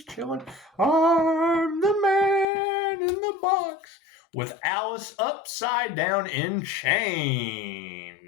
chilling. I'm the man in the box with Alice upside down in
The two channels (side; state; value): right; drops out; at 2.5 s